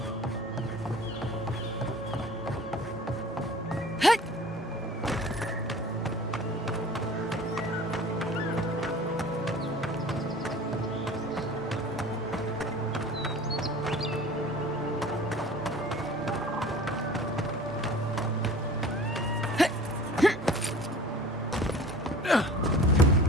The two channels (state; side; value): normal; both; correlation 0.43